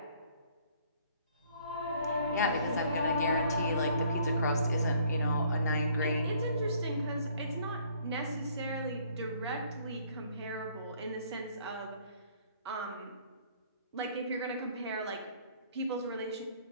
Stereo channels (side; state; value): both; inverted; correlation -0.60